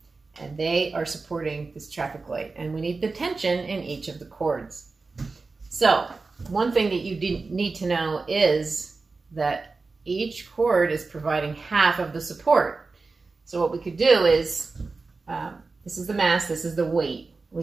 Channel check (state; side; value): quieter; left; 4.0 dB